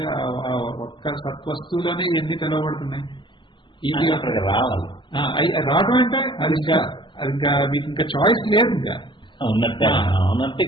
ఒక్క సత్వస్తువులోనే ఎన్ని తెలవబడుతున్నాయి. ఇది రావాలి, రావడం అంటే అది ఇంకా మీకు ఇంకా చాయిస్ లేదు, ఇంకా ఉన్నట్టే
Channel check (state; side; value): late; right; 0.23 ms